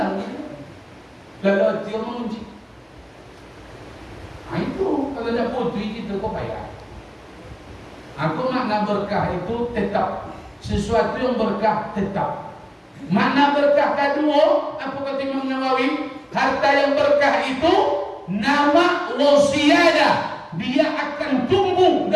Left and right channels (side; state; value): both; identical; correlation 1.00